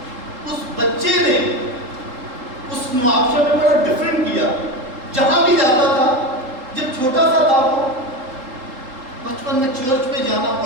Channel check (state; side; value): late; left; 3.8 ms